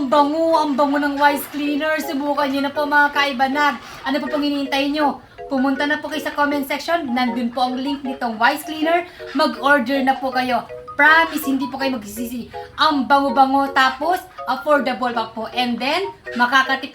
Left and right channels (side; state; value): both; identical; correlation 1.00